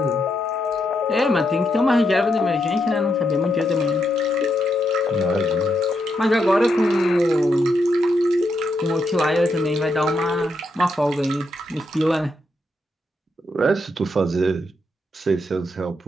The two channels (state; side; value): normal; both; correlation 0.81